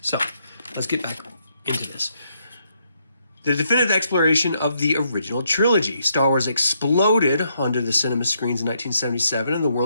So, let's get back into this. The definitive exploration of the original trilogy. Star Wars exploded onto the cinema screens in 1977, and the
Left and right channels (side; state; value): both; inverted; correlation -0.75